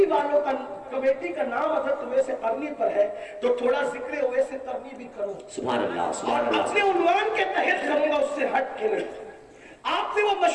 کا نام حضرت اویس قرنی پر ہے تو تھوڑا ذکر اویس قرنی بھی کروں. سبحان اللہ سبحان اور اللہ. اپنے عنوان کے تحت کروں گا، اس سے ہٹ کے نہیں. آپ نے وہ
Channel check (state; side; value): identical; both; correlation 1.00